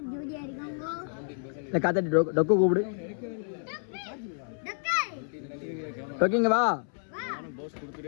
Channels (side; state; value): right; silent; 58 dB below the other